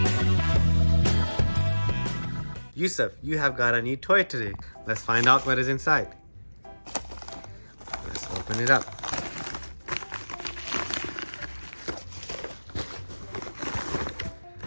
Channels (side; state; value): both; inverted; correlation -1.00